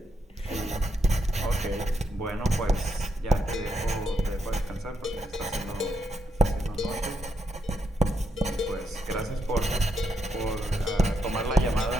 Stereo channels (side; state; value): both; normal; correlation 0.80